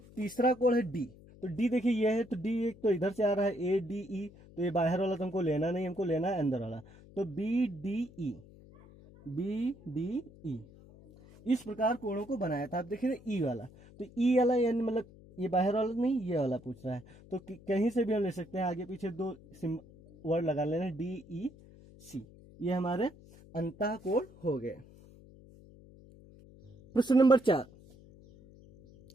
तीसरा कोण है D। तो D देखिए ये है, तो D एक तो इधर से आ रहा है ADE, तो ये बाहर वाला तो हमको लेना नहीं, हमको लेना है अंदर वाला। तो BDE इस प्रकार कोणों को बनाया था। आप देखिए E वाला, तो E वाला यानी मतलब ये बाहर वाला नहीं, ये वाला पूछ रहा है। तो कहीं से भी हम ले सकते हैं, आगे पीछे 2 वर्ड लगा लेना, DEC, ये हमारे अंतःकोण हो गए। प्रश्न नंबर 4,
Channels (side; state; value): left; noise; hum, 22 dB below the sound